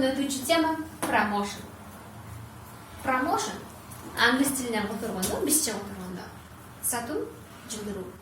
өтүүчү тема промоушен. Промоушен англис тилинен которгондо, бизче которгондо сатуу, жылдыруу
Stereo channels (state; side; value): identical; both; correlation 1.00